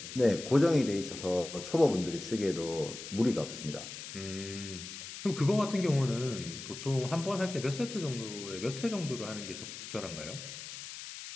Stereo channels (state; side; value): noise; left; hiss, 10 dB below the sound